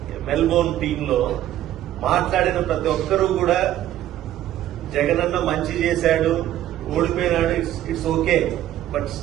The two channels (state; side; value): quieter; left; 12.8 dB